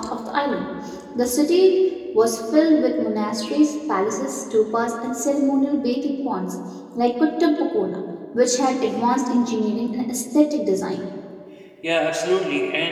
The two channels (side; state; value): both; identical; correlation 1.00